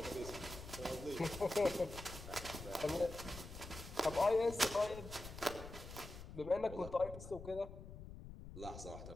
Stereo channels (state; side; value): noise; left; rumble, 12 dB below the sound